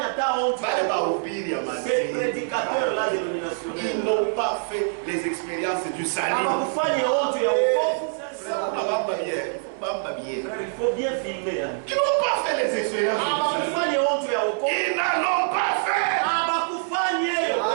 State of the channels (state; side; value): silent; left; digital silence